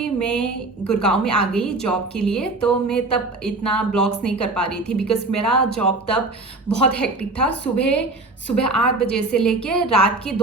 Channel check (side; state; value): left; quieter; 3.1 dB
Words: मैं गुड़गांव में आ गई जॉब के लिए, तो मैं तब इतना ब्लॉग्स नहीं कर पा रही थी बिकॉज़ मेरा जॉब तब बहुत हेक्टिक था। सुबह 8 बजे से लेके रात के